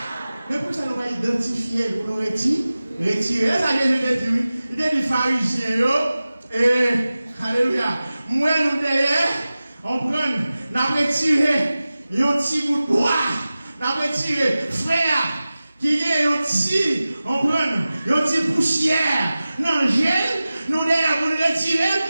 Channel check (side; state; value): both; inverted; correlation -0.96